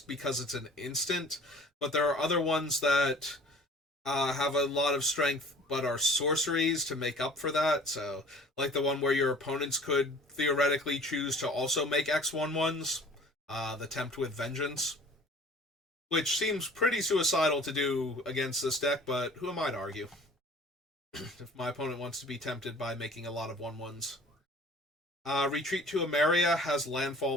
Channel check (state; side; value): normal; both; correlation 0.48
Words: because it's an instant, but there are other ones that have a lot of strength but are sorceries to make up for that. So, like the one where your opponents could theoretically choose to also make X1/1s, the Tempt with Vengeance, which seems pretty suicidal to do against this deck, but who am I to argue? If my opponent wants to be tempted by making a lot of 1/1s. Retreat to Emeria has